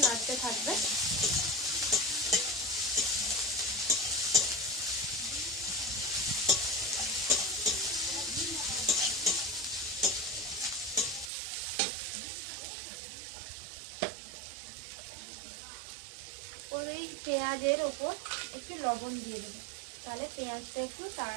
নাড়তে থাকবে। ওর এই পেঁয়াজের ওপর একটু লবণ দিয়ে দেবে, তাহলে পেঁয়াজটা একটু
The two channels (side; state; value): left; drops out; at 11.3 s